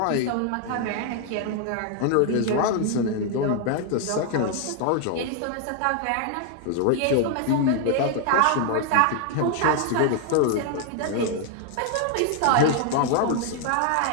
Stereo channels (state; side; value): different; both; correlation 0.00